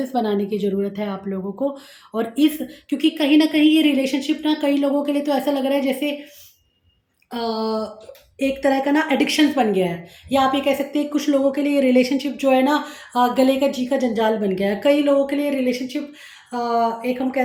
बनाने की ज़रूरत है आप लोगों को। और इस क्योंकि कहीं न कहीं ये रिलेशनशिप ना कई लोगों के लिए तो ऐसा लग रहा है जैसे एक तरह का ना एडिक्शंस बन गया है, या आप ये कह सकते हैं कुछ लोगों के लिए रिलेशनशिप जो है ना गले का जी का जंजाल बन गया है। कई लोगों के लिए रिलेशनशिप एक हम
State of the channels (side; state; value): both; identical; correlation 1.00